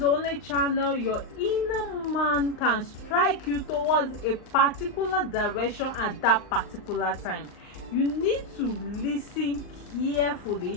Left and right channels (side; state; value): right; late; 39 ms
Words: only channel your inner man can strike you towards a particular direction at that particular time. You need to listen carefully